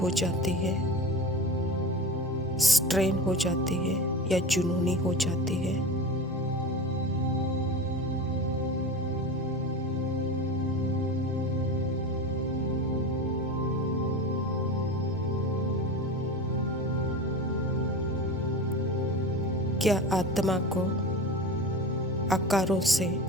जाती है, स्ट्रेन हो जाती है या जुनूनी हो जाती है? क्या आत्मा को आकारों से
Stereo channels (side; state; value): both; normal; correlation 0.29